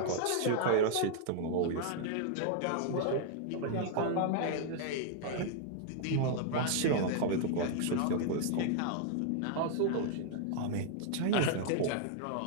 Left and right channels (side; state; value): both; different; correlation -0.01